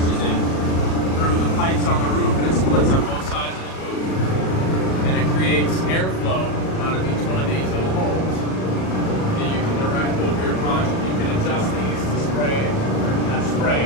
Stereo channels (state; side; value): late; right; 37 ms